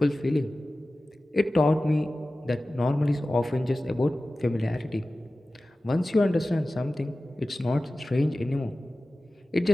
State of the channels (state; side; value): normal; both; correlation 0.96